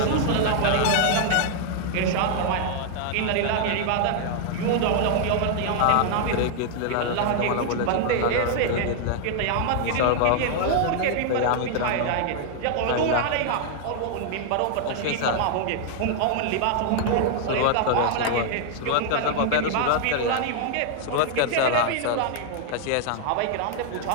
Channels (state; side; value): different; both; correlation 0.00